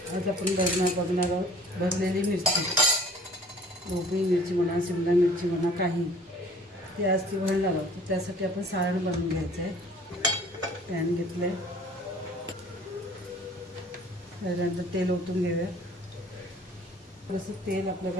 आज आपण बघणार आहोत भरलेली मिरची, ढोबळी मिरची म्हणा, शिमला मिरची म्हणा, काही ते आज ती भरणार आहोत. त्यासाठी आपण सारण बनवून घ्यायचं आहे. पॅन घेतलं आहे, त्यानंतर तेल ओतून घेऊया. जसं तेल आपलं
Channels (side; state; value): both; normal; correlation 0.51